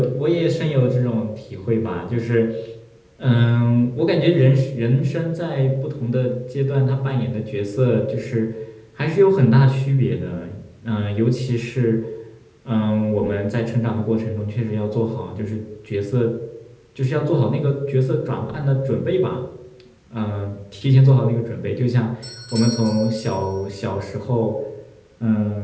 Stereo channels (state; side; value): identical; both; correlation 1.00